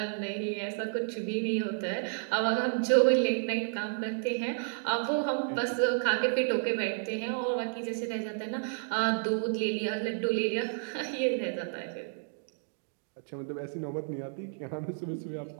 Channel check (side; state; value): left; silent; digital silence